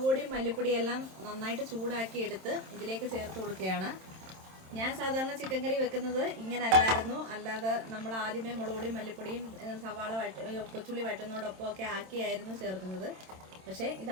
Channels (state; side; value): late; left; 27 ms